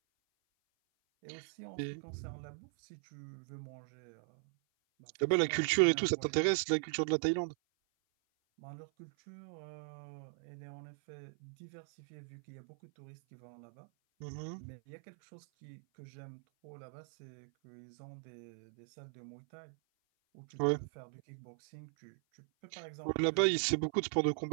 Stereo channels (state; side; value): silent; left; 52 dB below the other